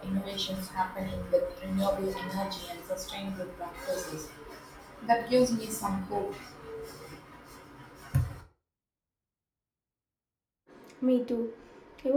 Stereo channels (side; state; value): both; identical; correlation 1.00